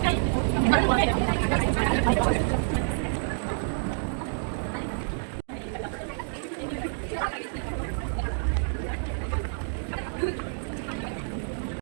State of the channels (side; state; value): left; silent; digital silence